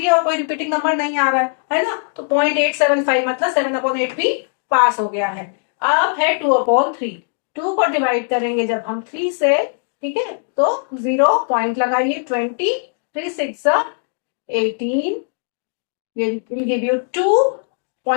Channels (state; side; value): silent; right; 63 dB below the other